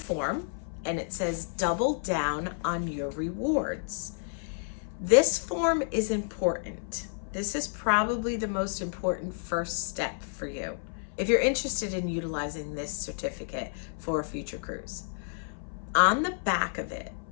and it says double down on your rewards. This form is important. This is probably the most important first step for you if you're interested in utilizing this certificate for a future cruise. On the back of it,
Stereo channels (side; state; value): right; silent; 56 dB below the other